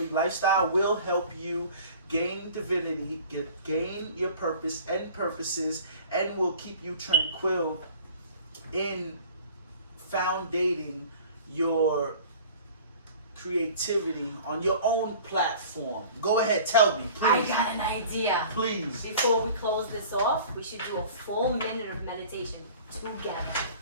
lifestyle will help you gain divinity, gain your purpose and purposes, and will keep you tranquil in foundating your creativity on your own platform. Go ahead, tell me, I please. got an idea. Please. Before we close this off, we should do a full minute of meditation together.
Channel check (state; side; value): inverted; both; correlation -0.45